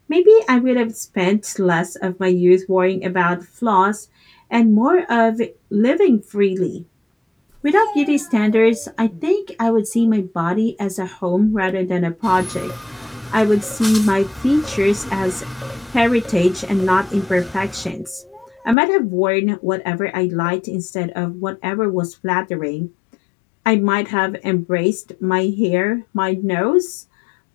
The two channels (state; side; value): drops out; right; at 18.8 s